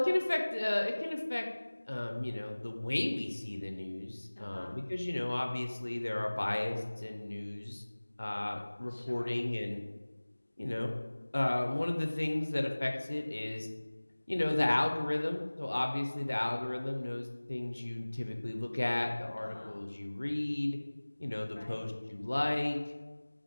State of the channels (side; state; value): both; inverted; correlation -1.00